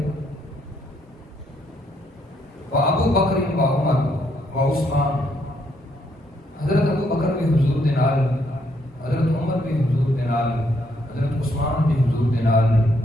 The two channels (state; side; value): normal; both; correlation 0.73